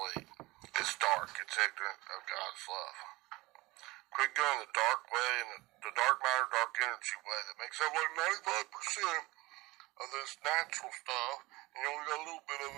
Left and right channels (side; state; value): left; quieter; 21.3 dB